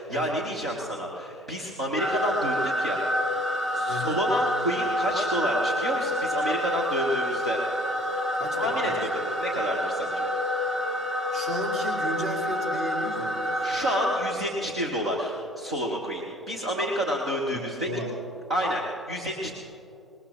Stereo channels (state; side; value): normal; both; correlation 0.55